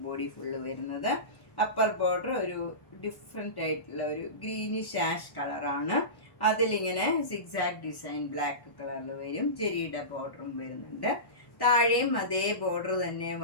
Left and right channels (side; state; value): right; late; 1.1 ms